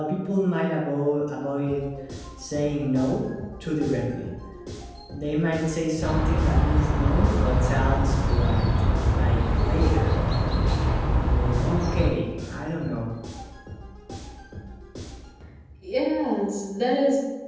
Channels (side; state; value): both; identical; correlation 1.00